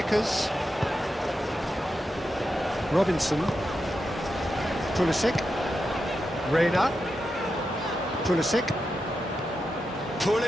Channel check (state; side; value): normal; both; correlation 0.88